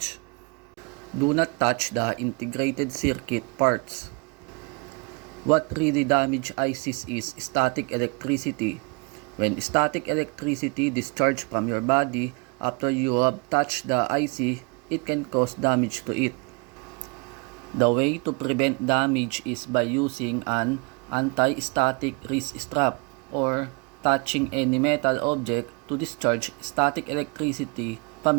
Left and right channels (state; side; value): quieter; left; 32.0 dB